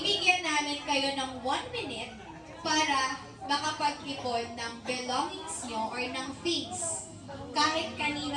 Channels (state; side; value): identical; both; correlation 1.00